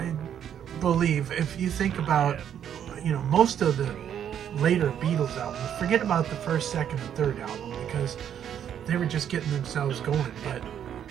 believe, if you think about, you know, most of the later Beatles albums, forget about the first, second, and third album, because they were just getting themselves going.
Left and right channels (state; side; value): quieter; left; 9.4 dB